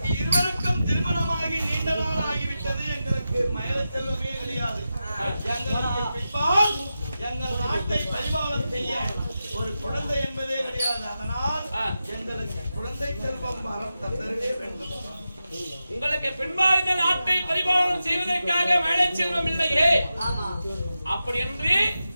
இருவருக்கும் திருமணமாகி நீண்ட நாள் ஆகிவிட்டது. எங்களுக்கு மயல செல்வமே கிடையாது. எங்களுக்கு பின்பால் எங்கள் நாட்டை பரிபாலனம் செய்ய ஒரு குழந்தை என்பதே கிடையாது. அதனால் எங்களுக்கு குழந்தை செல்வம் தரவே வேண்டும். உங்களுக்கு பின்பால் இந்த நாட்டை பரிபாலனம் செய்வதற்காக மயல செல்வம் இல்லையே. அப்படி என்று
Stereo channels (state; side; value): inverted; both; correlation -0.91